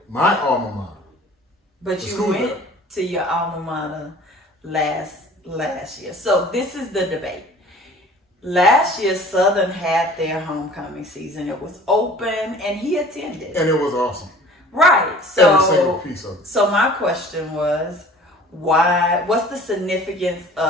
my alma mater. But you went to your alma mater last year. So this is the debate. Last year, Southern had their homecoming season. It was open, and he attended. And it was awesome. Right. So, every single piece of it. So my question was, what's the significance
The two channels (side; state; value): both; normal; correlation 0.47